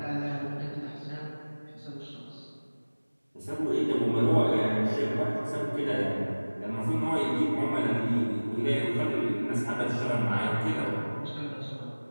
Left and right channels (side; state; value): both; inverted; correlation -1.00